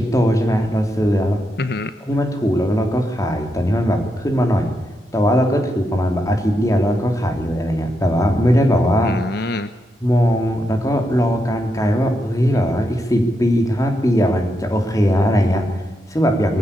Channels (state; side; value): normal; both; correlation 0.83